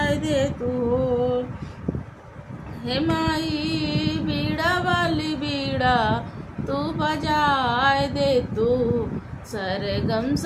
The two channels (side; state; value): both; identical; correlation 1.00